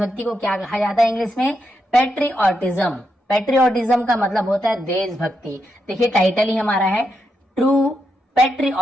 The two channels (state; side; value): normal; both; correlation 0.83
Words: को क्या कहा जाता है इंग्लिश में? पेट्रियोटिज्म। पेट्रियोटिज्म का मतलब होता है देशभक्ति। देखिए टाइटल ही हमारा है ट्रू